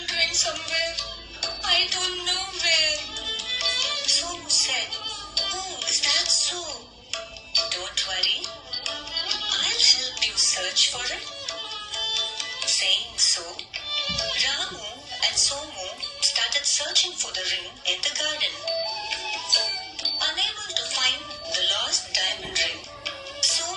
ring somewhere. I don't know where." Somu said, "Oh, is that so? Don't worry. I'll help you search for it." Saying so, Ramu and Somu started searching for the ring in the garden. Unable to find the lost diamond ring,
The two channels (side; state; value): both; identical; correlation 1.00